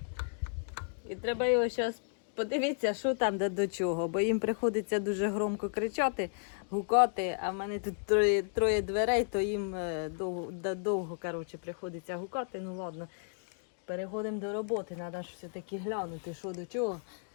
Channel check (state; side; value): silent; right; digital silence